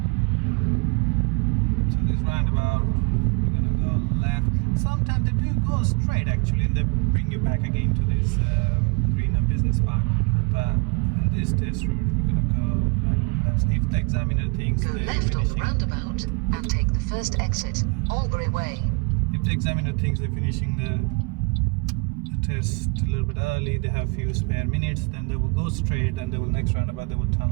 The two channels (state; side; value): quieter; left; 32.4 dB